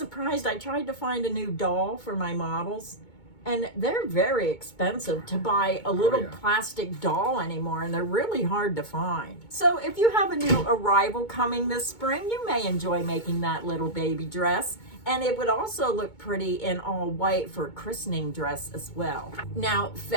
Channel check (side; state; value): right; late; 2.2 ms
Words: I tried to find a new doll for my models, and they're very expensive to buy a little plastic doll anymore, and they're really hard to find. So if you have a new arrival coming this spring, you may enjoy making that little baby dress. And it would also look pretty in all white for a christening dress as well. Now,